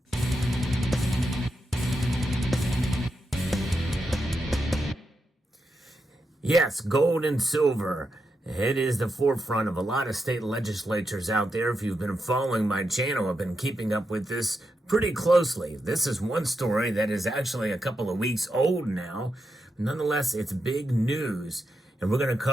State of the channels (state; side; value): normal; both; correlation 0.86